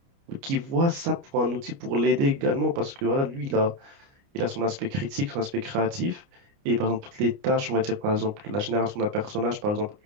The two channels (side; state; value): left; late; 29 ms